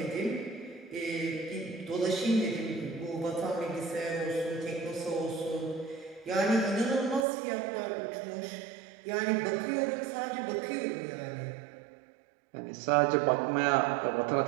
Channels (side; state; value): left; drops out; at 7.2 s